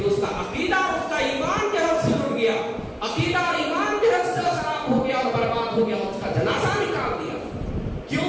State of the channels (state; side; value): identical; both; correlation 1.00